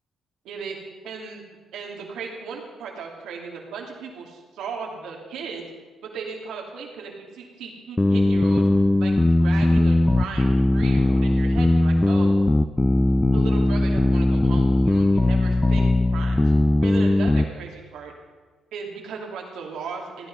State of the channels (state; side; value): normal; both; correlation 0.97